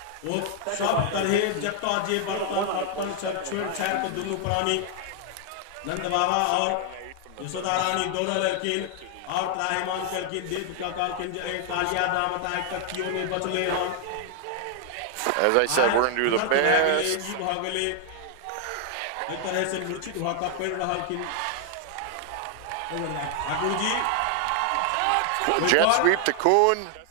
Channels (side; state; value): both; different; correlation 0.00